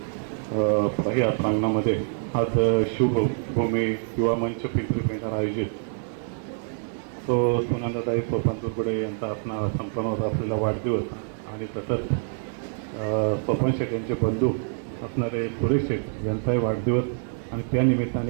या प्रांगणामध्ये आज शिवभूमी युवा मंच पिंपरी पेंढार आयोजित तो सुनंदाताई सोपान तुरगुडे यांचा असणारा संपन्न होत असलेला वाढदिवस आणि तसंच सोपान शेठ यांचे बंधू असणारे सुरेश शेठ यांचाही वाढदिवस आणि त्या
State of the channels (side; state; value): left; silent; 61 dB below the other